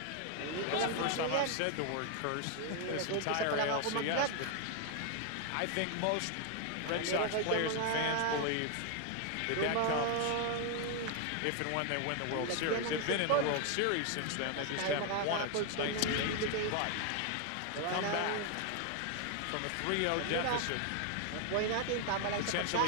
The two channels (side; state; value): both; different; correlation 0.01